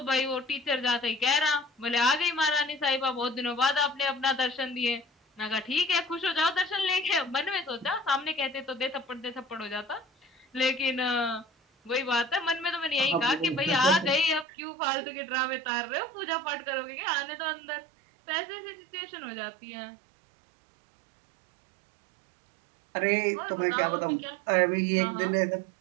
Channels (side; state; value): left; drops out; at 14.5 s